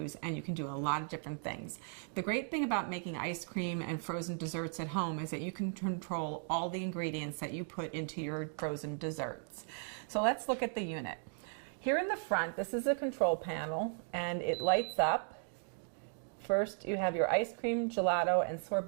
and you can do a lot of different things. The great thing about making ice cream and frozen desserts at home is that you can control all the ingredients that you put into your frozen desserts. So let's look at the unit. Here in the front, this is a control panel, and it lights up. First, you have your ice cream, gelato, and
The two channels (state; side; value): silent; left; 53 dB below the other